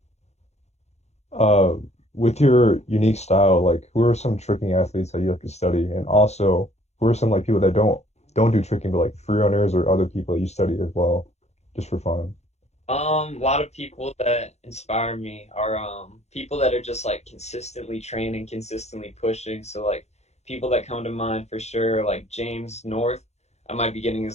Uh, with your unique style, like who are some tricking athletes that you like to study, and also who are some like people that don't do tricking, but like free runners or other people that you study as well, just for fun. A lot of people that inspire me are people that are just like consistently training, consistently pushing. So like people that come to mind for sure, like James North. I might be getting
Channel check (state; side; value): late; right; 0.32 ms